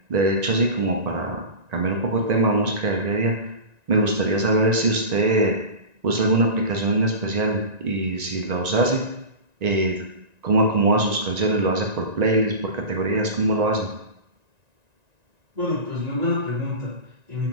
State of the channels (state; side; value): late; left; 1.9 ms